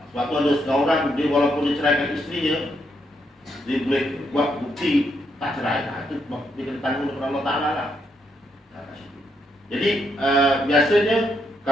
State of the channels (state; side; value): normal; both; correlation 0.78